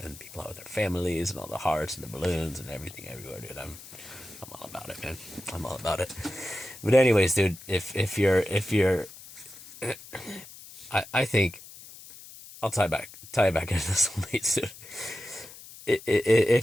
and people out with their families, and all the hearts and the balloons and everything everywhere, dude. I'm all about it, man. I'm all about it. But anyways, dude, if you're I think I'll tie back into this one, mate, dude.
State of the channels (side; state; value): left; noise; hiss, 17 dB below the sound